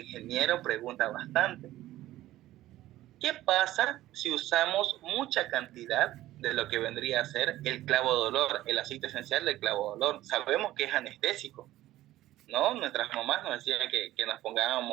pregunta bastante. ¿Qué pasa si usamos mucha cantidad de lo que vendría a ser el clavo de olor, el aceite esencial del clavo de olor? Sabemos que es anestésico, ¿no? Nuestras mamás nos decían que nos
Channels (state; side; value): quieter; left; 15.1 dB